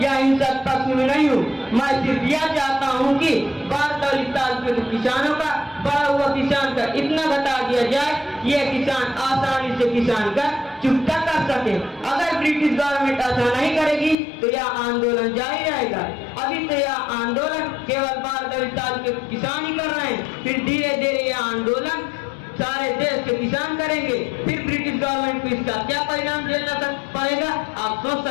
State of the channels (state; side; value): drops out; right; at 14.2 s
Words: या हिंसक पक्ष में नहीं हूँ। मैं सिर्फ यह चाहता हूँ कि बारदाली तालुके के किसानों का बड़ा हुआ किसान का इतना घटा दिया जाए कि यह किसान आसानी से किसान का चुकता कर सके। अगर ब्रिटिश गवर्नमेंट ऐसा नहीं करेगी तो यह आंदोलन जारी रहेगा। अभी तो यह आंदोलन केवल बारदाली तालुके के किसान ही कर रहे हैं, फिर धीरे धीरे यह आंदोलन सारे देश के किसान करेंगे। फिर ब्रिटिश गवर्नमेंट को इसका क्या परिणाम झेलना पड़ेगा आप सोच